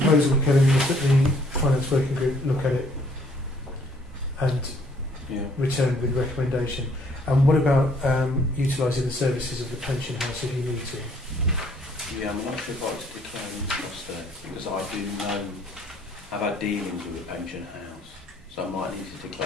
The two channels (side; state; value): both; normal; correlation 0.62